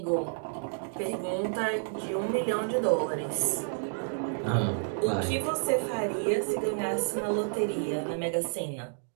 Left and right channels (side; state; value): left; silent; digital silence